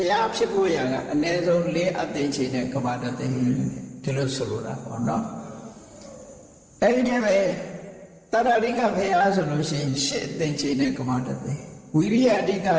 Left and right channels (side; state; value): both; identical; correlation 1.00